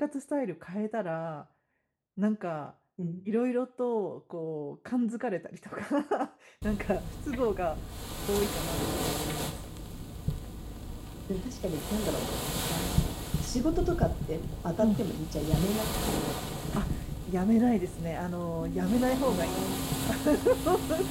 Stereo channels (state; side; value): identical; both; correlation 1.00